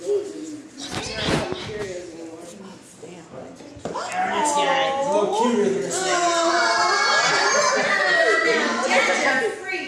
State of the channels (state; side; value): identical; both; correlation 1.00